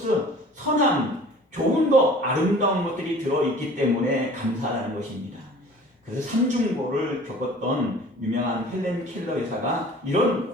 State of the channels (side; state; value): both; normal; correlation 0.46